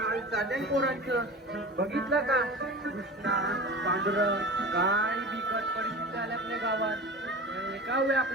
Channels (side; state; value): both; normal; correlation 0.33